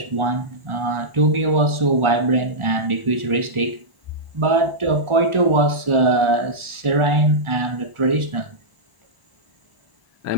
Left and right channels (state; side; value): late; left; 1.4 ms